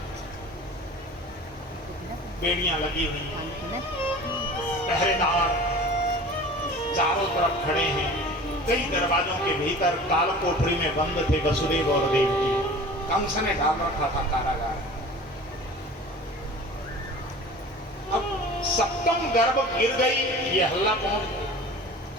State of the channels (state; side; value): normal; both; correlation 0.40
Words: बेड़ियां लगी हुई, पहरेदार चारों तरफ खड़े हैं। कई दरवाजों के भीतर काल कोठरी में बंद थे वसुदेव और देवकी। कंस ने डाल रखा था कारागार। अब 7वां गर्भ गिर गई, ये हल्ला पहुंच गया,